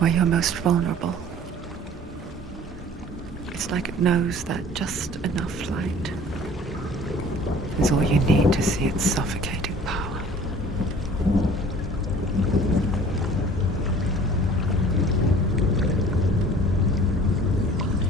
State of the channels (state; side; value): normal; both; correlation 0.48